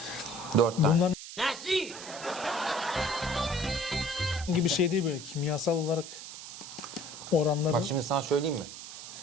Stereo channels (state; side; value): noise; right; hiss, 12 dB below the sound